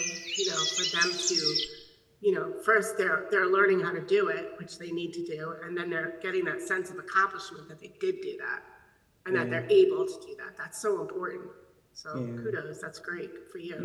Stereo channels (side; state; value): both; identical; correlation 1.00